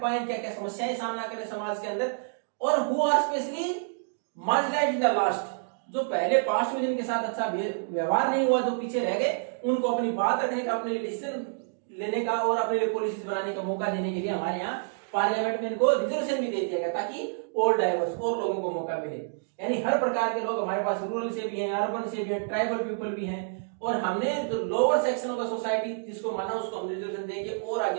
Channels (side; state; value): left; silent; digital silence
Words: पाए, क्या क्या समस्याएं सामना करें समाज के अंदर, और who are specially marginalised in the last, जो पहले पास्ट में जिनके साथ अच्छा व्यवहार नहीं हुआ, जो पीछे रह गए, उनको अपनी बात रखने का, अपने लिए डिसीजन लेने का और अपने लिए पॉलिसीज बनाने का मौका देने के लिए हमारे यहाँ पार्लियामेंट में इनको रिजर्वेशन भी दे दिया गया, ताकि और डाइवर्स और लोगों को मौका मिले। यानी हर प्रकार के लोग हमारे पास, रूरल से भी हैं, अर्बन से भी हैं, ट्राइबल पीपल भी हैं, और हमने जो lower section of the society जिसको माना उसको हम रिजर्वेशन देके और